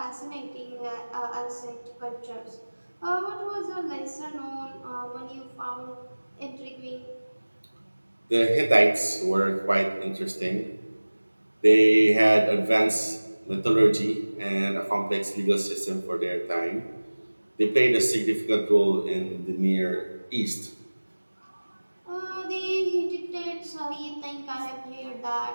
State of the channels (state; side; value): inverted; both; correlation -1.00